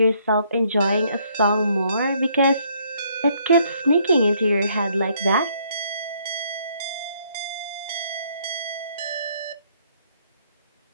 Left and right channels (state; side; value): inverted; both; correlation -0.67